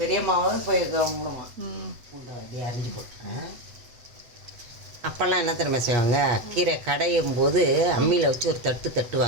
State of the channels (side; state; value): left; late; 8.0 ms